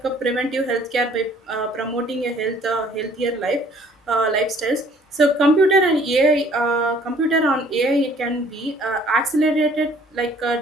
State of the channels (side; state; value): both; normal; correlation 0.57